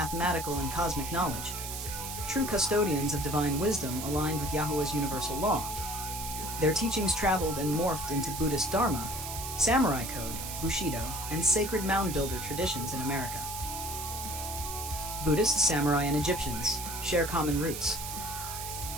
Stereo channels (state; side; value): noise; right; hiss, 7 dB below the sound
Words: and cosmic knowledge, true custodians of divine wisdom aligned with Yahuwah's universal law. Their teachings traveled and morphed into Buddhist Dharma, samurai code, Bushido, and sacred mound builder traditions in America. Buddhists, samurai, and Egyptians share common roots.